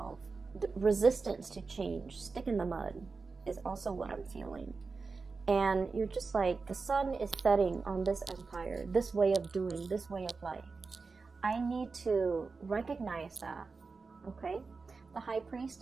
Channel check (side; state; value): left; quieter; 4.4 dB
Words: The resistance to change, stick in the mud, is also what I'm feeling. And you're just like, the sun is setting on this empire, this way of doing, this way of life. I need to recognize that, okay? The high